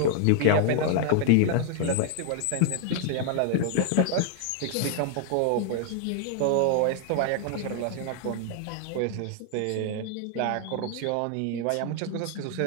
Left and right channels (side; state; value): both; different; correlation 0.00